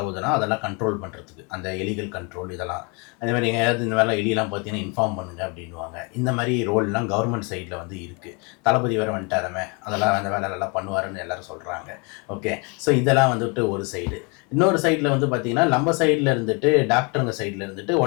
அதெல்லாம் கண்ட்ரோல் பண்ணுறதுக்கு, அந்த எலிகள் கண்ட்ரோல் இதெல்லாம். அதே மாதிரி எங்கேயாவது இந்த வேலை எலியெல்லாம் பார்த்தீங்கன்னா இன்ஃபார்ம் பண்ணுங்க அப்படின்வாங்க. இந்த மாதிரி ரோல்லாம் கவர்மெண்ட் சைடில் வந்து இருக்குது. தளபதி வேறு வந்துட்டாரமே, அதெல்லாம் அந்த வேலையெல்லாம் பண்ணுவாருன்னு எல்லோரும் சொல்கிறாங்க. ஓகே, ஸோ இதெல்லாம் வந்துட்டு ஒரு சைடு. இன்னொரு சைடில் வந்து பார்த்திங்கன்னா நம்ம சைடில் இருந்துட்டு டாக்டருங்க சைடில் இருந்துட்டு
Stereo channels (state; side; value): quieter; right; 31.9 dB